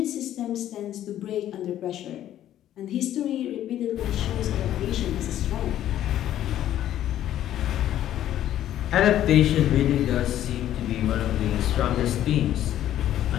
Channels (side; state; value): right; quieter; 12.0 dB